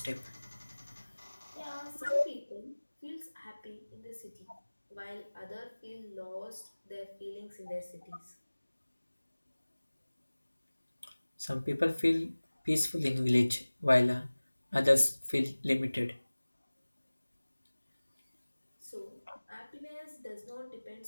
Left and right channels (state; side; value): inverted; both; correlation -1.00